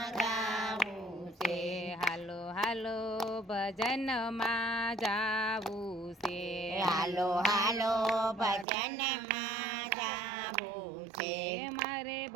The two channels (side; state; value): left; drops out; at 8.7 s